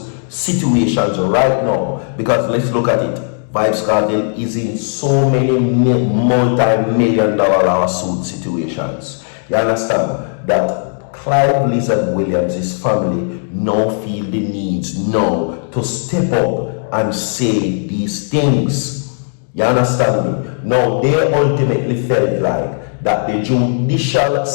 situations right now, because let's look at it, VYBZ Kartel is in so many multi-million-dollar lawsuit situations. You understand that Clive Lizard Williams' family now feel the needs now to step up and say these things. You understand me? Now they ultimately felt like that the judicial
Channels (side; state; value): right; silent; 65 dB below the other